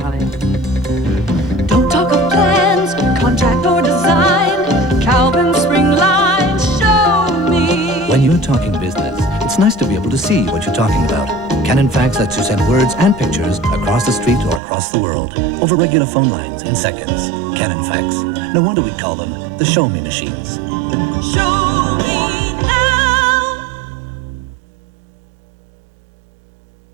Don't talk of plans, contract or design. Calvin Spring Line, show me. When you're talking business, it's nice to be able to see what you're talking about. Canon Fax lets you send words and pictures across the street or across the world over regular phone lines in seconds. Canon Fax. No wonder we call them the Show Me machines. Show me now.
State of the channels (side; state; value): left; drops out; at 14.6 s